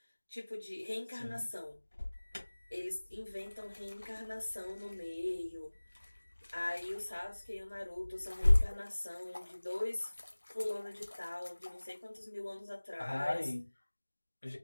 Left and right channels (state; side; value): inverted; both; correlation -1.00